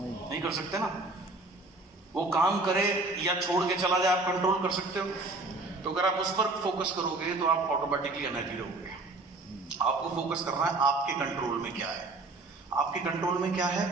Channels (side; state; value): left; quieter; 3.2 dB